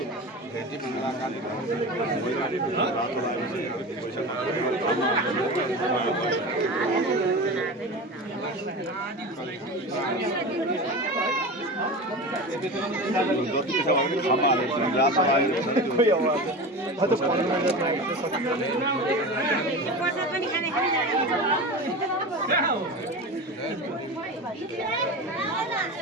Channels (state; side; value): normal; both; correlation 0.28